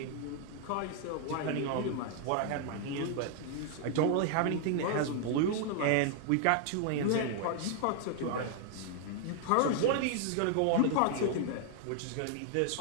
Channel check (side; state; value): both; different; correlation 0.00